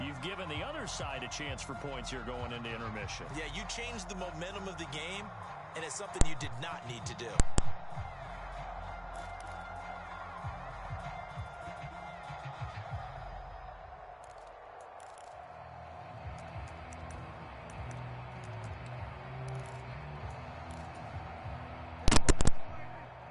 given the other side a chance for points here going into intermission. Yeah, you changed the momentum of the game, and it's something you did not need to do.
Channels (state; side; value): identical; both; correlation 1.00